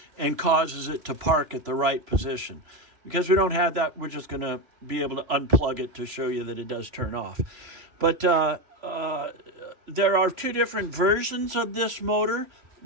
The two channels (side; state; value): left; late; 3.0 ms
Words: and causes it to park at the right position. Because we don't have that, we're just going to be able to unplug it to show you that it does turn off. But there are two different versions of this motor.